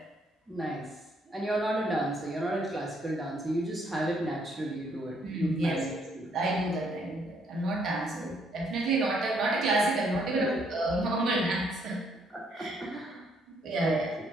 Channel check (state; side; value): normal; both; correlation 0.69